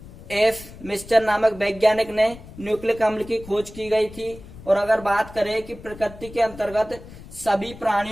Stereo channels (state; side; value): noise; left; rumble, 17 dB below the sound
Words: एफ मिस्टर नामक वैज्ञानिक ने न्यूक्लिक अम्ल की खोज की गई थी। और अगर बात करें कि प्रकृति के अंतर्गत सभी